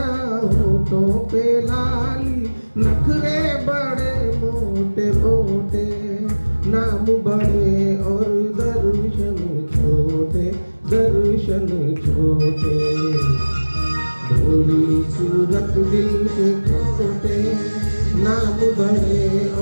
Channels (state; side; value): inverted; both; correlation -1.00